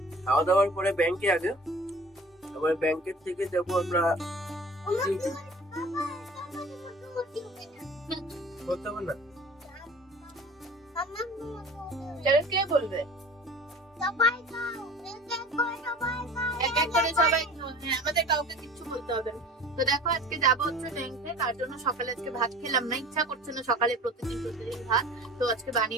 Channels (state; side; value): normal; both; correlation 0.42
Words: খাওয়া দাওয়ার পরে ব্যাংকে আগে, আবার ব্যাংকের থেকে যাব আমরা বলতে হবে না কে বলবে আমাদের কাউকে কিছু বলতে হবে না। তো দেখো আজকে যাবো হচ্ছে ব্যাংকে, তার জন্য সকালে আজকে ভাত খেলাম না, ইচ্ছা করছে না সকালে প্রতিদিন ভাত। তো আজকে